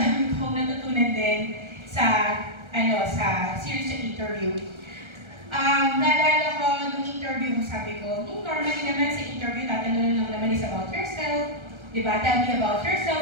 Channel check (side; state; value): left; late; 1.3 ms